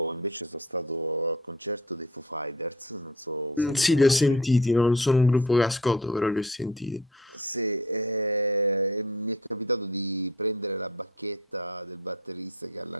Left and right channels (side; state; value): both; normal; correlation 0.42